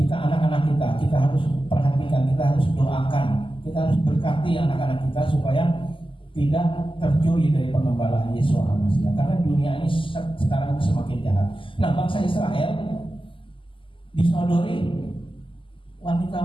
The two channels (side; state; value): right; late; 0.25 ms